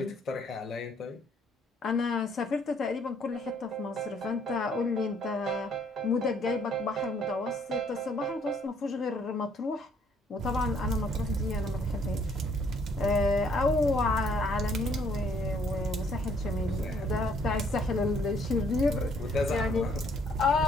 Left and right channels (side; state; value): both; normal; correlation 0.64